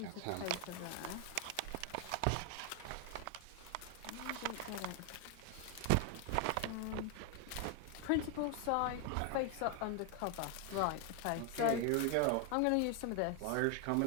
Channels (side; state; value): both; different; correlation 0.01